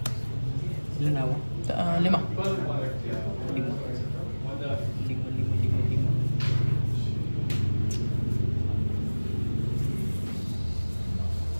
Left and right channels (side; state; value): both; inverted; correlation -1.00